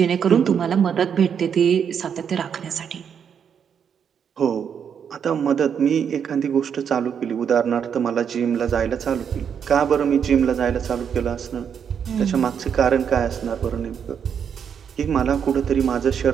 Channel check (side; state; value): left; quieter; 7.6 dB